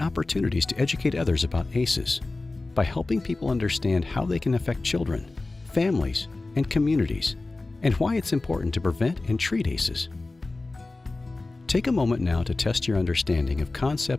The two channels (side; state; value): right; quieter; 3.2 dB